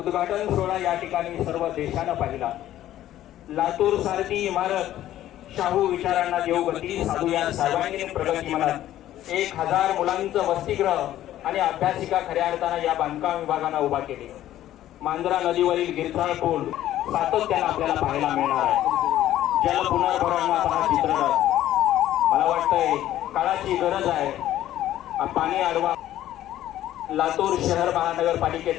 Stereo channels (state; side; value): quieter; right; 13.1 dB